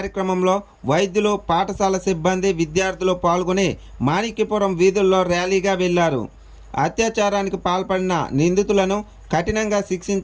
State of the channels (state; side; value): identical; both; correlation 1.00